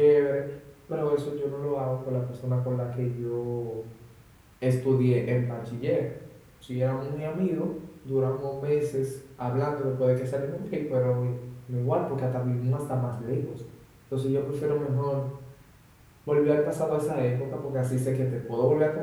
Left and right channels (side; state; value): both; identical; correlation 1.00